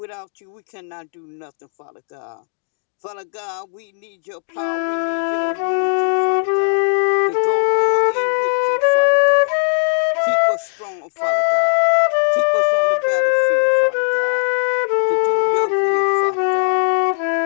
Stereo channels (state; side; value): silent; right; digital silence